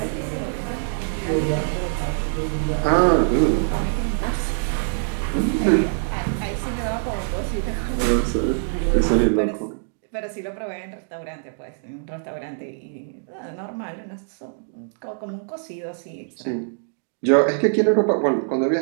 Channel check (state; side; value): silent; left; digital silence